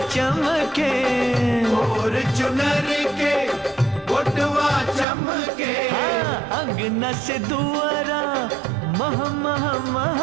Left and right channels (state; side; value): drops out; left; at 5.1 s